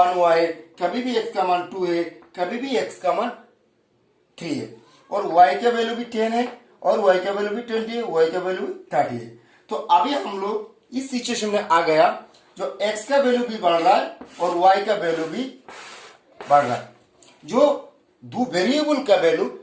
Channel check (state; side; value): identical; both; correlation 1.00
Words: हुआ है, कभी भी एक्स का मान 2 है, कभी भी एक्स का मान 3 है, और वाई का वैल्यू भी 10 है और वाई का वैल्यू भी 20 है, वाई का वैल्यू भी 30 है। तो अभी हम लोग इस सिचुएशन में आ गया, जो एक्स का वैल्यू भी बढ़ रहा है और वाई का वैल्यू भी बढ़ रहा है। जो दो वेरिएबल का वैल्यू